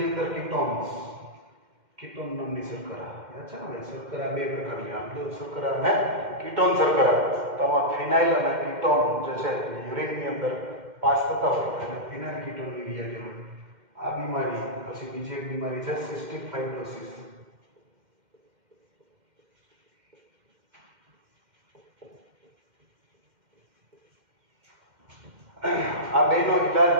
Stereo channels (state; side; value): late; left; 2.1 ms